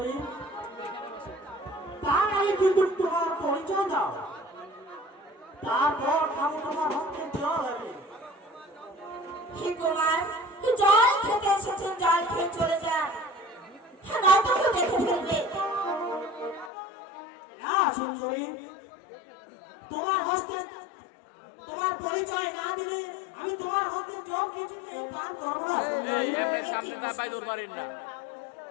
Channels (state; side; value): drops out; right; at 16.7 s